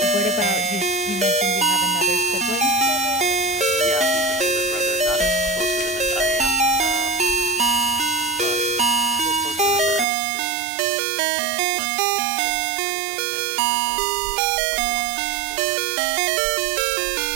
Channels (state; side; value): drops out; left; at 10.1 s